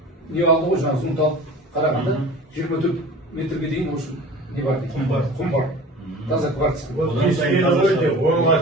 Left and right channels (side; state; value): both; normal; correlation 0.40